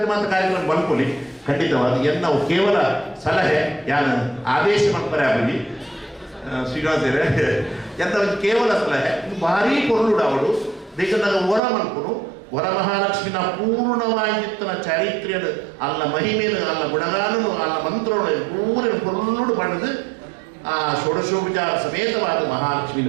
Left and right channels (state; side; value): drops out; left; at 11.6 s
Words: ಮಾತ್ರ ಕಾರ್ಯಕ್ರಮ ಬಂದ್ಕೊಳ್ಳಿ ಖಂಡಿತವಾದ ಎನ್ನ ನಾವು ಕೇವಲ ಸಲಹೆ ಯಾನು ಆದೇಶ ಮಾಡ್ತಾರೆ ಆಗಲಿ ಶ್ರೀನಿವಾಸರೇ ಎಂತ ಒಂದು ಕೇವಲ ಸಲಹೆ ಭಾರಿ ಪೊರ್ಲೋಡಾವಡು ಬೇಕಂದಾಗ ವರ ಮನ್ಕೊನು ವರಮಹಾಲಕ್ಷ್ಮಿನ ಪೂರ್ಣವಾಗಿತ್ತನ ಚಾರಿತ್ರ್ಯದ ಅಲ್ಲ ಮಹಿಮೆನು ಅಲ್ಲ ಗುಣಗಾನನು ಅಲ್ಲ ಮಂತ್ರಗಳು ಪೂರ್ಣ ಪೊರ್ಲೋಡು ಪಡೆದು ಆ ಷೋಡಶೋಪಚಾರ ಸಮೇತವಾದ